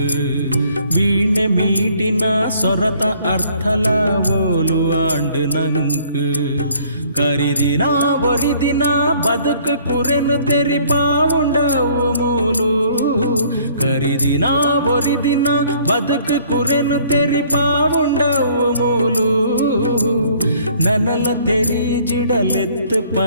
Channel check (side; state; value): both; inverted; correlation -0.58